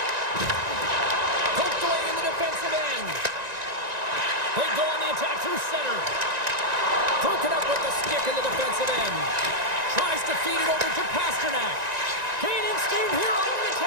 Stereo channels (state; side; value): late; left; 1.9 ms